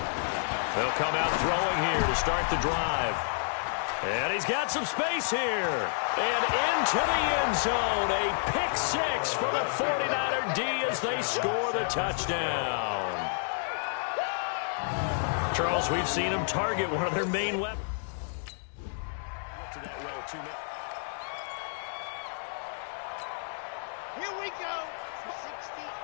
They'll come out throwing here to start the drive. And he's got some space here. And into the end zone. A pick 6 for the 49er D as they score the touchdown. Charles, we've seen him target one of their main weapons. Here we go. 60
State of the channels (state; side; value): silent; right; digital silence